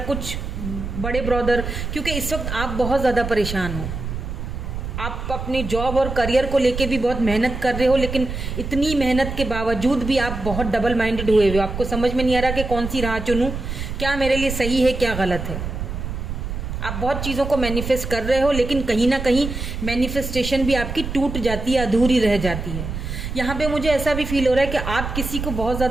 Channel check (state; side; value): noise; right; rumble, 5 dB below the sound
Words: कुछ बड़े ब्रदर, क्योंकि इस वक्त आप बहुत ज़्यादा परेशान हो। आप अपने जॉब और करियर को लेके भी बहुत मेहनत कर रहे हो, लेकिन इतनी मेहनत के बावजूद भी आप बहुत डबल माइंडेड हुए हो। आपको समझ में नहीं आ रहा कि कौन सी राह चुनूं, क्या मेरे लिए सही है, क्या गलत है। आप बहुत चीज़ों को मैनिफेस्ट कर रहे हो, लेकिन कहीं ना कहीं मैनिफेस्टेशन भी आपकी टूट जाती है, अधूरी रह जाती है। यहाँ पे मुझे ऐसा भी फील हो रहा है कि आप किसी को बहुत